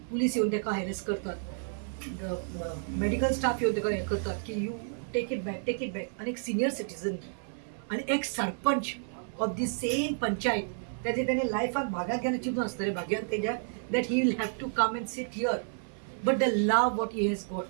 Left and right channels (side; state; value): left; silent; 57 dB below the other